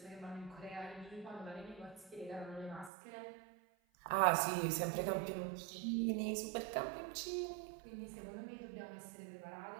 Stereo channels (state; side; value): drops out; left; at 2.9 s